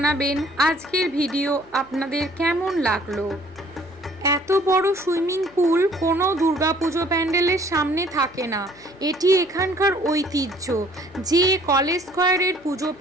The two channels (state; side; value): noise; left; hum, 27 dB below the sound